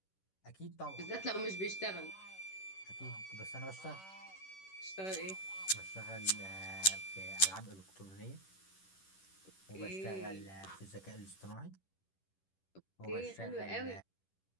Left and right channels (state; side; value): late; right; 10 ms